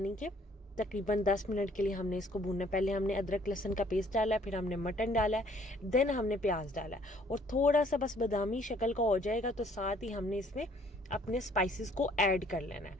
कि तकरीबन 10 मिनट के लिए हमने इसको भूनना है। पहले हमने अदरक लहसुन का पेस्ट डाला है, फिर हमने मटन डाला है, देन हमने प्याज डाला है और थोड़ा सा बस बादामी शक्ल का हो जाएगा तो साथ ही हमने इसमें अपने स्पाइसेस को ऐड कर लेना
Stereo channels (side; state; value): both; normal; correlation 0.60